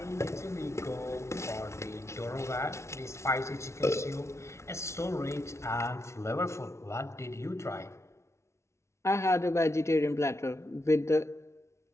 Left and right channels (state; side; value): late; right; 0.13 ms